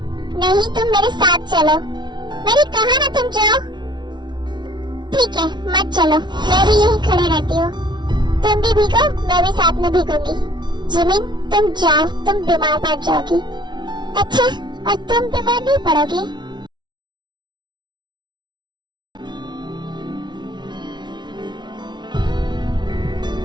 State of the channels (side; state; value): left; late; 0.21 ms